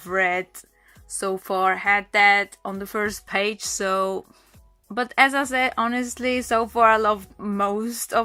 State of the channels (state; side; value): identical; both; correlation 1.00